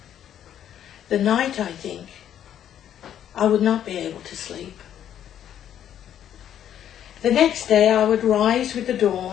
The night, I think, I would not be able to sleep. The next day I would rise with the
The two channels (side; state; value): right; quieter; 10.2 dB